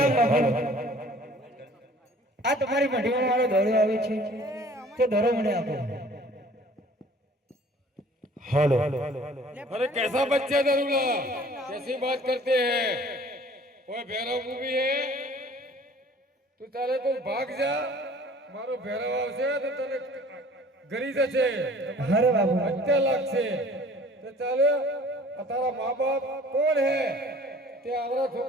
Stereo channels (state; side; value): normal; both; correlation 0.51